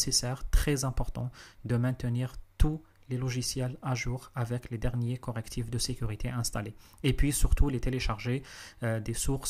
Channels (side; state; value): both; identical; correlation 1.00